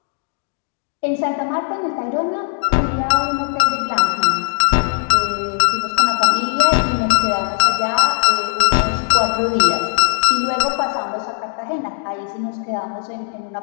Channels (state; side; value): silent; right; digital silence